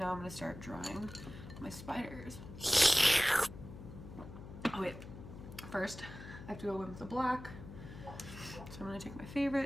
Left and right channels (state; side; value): noise; left; hum, 13 dB below the sound